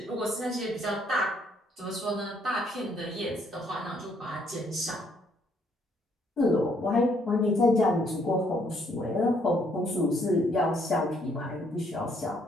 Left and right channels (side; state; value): both; normal; correlation 0.68